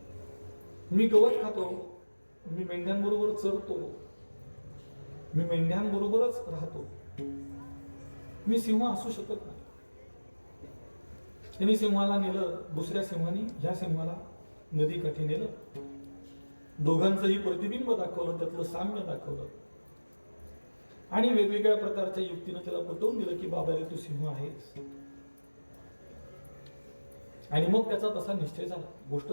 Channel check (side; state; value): both; inverted; correlation -1.00